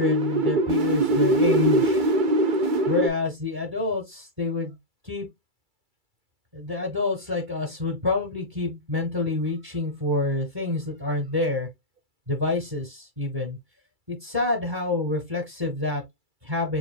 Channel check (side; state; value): left; late; 2.3 ms